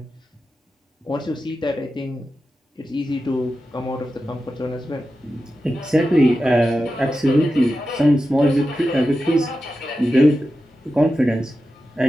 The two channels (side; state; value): both; normal; correlation 0.92